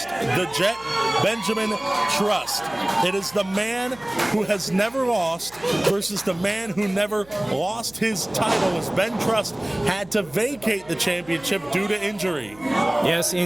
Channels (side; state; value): right; noise; hum, 25 dB below the sound